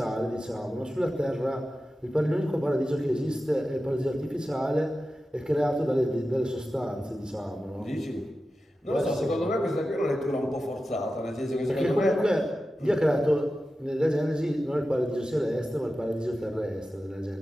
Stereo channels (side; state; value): both; normal; correlation 0.93